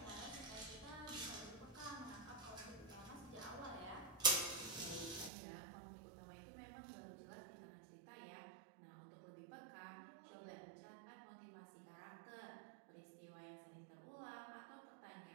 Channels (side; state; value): left; drops out; at 5.3 s